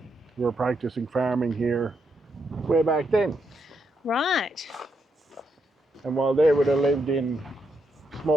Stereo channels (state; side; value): normal; both; correlation 0.80